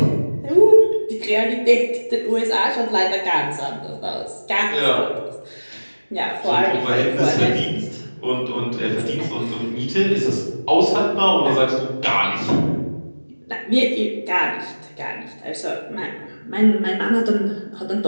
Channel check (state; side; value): inverted; both; correlation -1.00